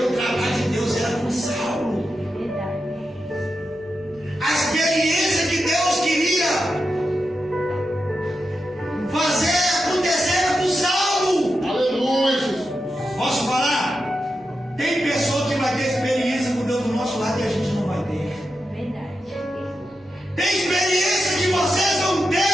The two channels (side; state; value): left; noise; hum, 29 dB below the sound